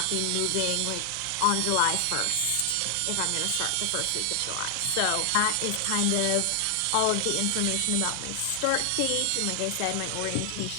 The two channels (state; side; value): different; both; correlation 0.00